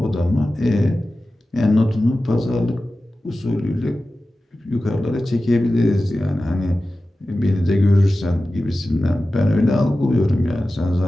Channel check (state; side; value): normal; both; correlation 0.94